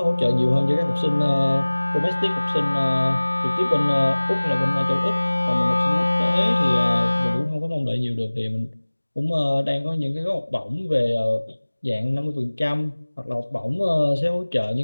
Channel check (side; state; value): both; inverted; correlation -1.00